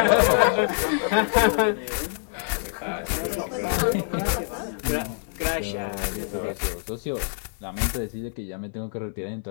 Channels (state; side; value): silent; right; 61 dB below the other